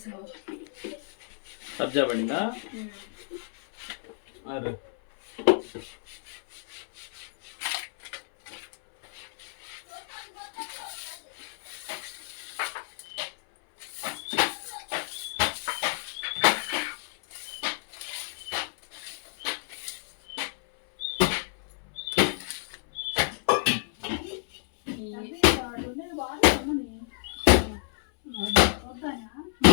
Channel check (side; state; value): right; silent; 57 dB below the other